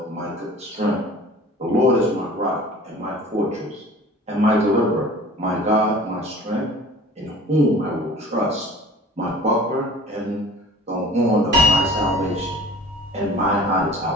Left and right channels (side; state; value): both; normal; correlation 0.44